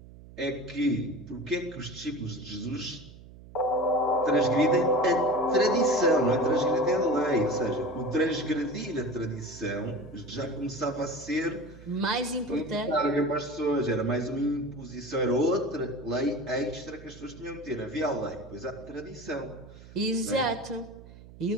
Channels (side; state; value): right; noise; hum, 19 dB below the sound